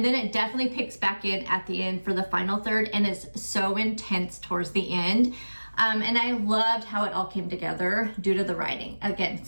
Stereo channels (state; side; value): inverted; both; correlation -1.00